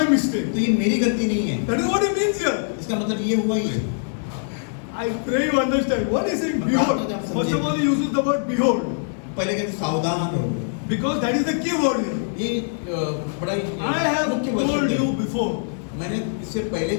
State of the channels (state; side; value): silent; right; digital silence